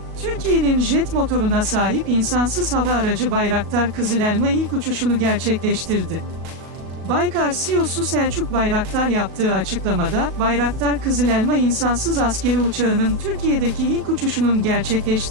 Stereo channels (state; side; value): late; left; 36 ms